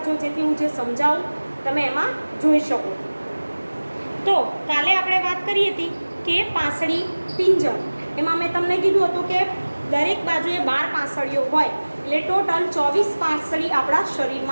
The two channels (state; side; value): inverted; both; correlation -1.00